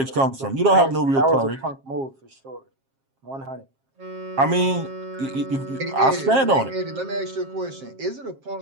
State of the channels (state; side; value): late; left; 7.5 ms